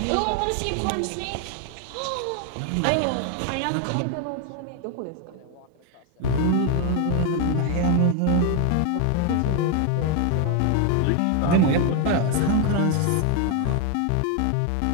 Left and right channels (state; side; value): different; both; correlation 0.01